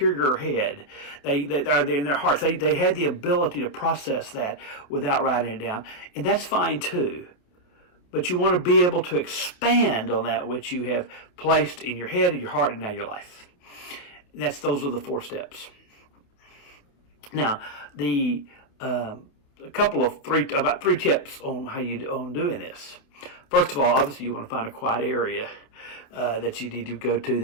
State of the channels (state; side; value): late; right; 28 ms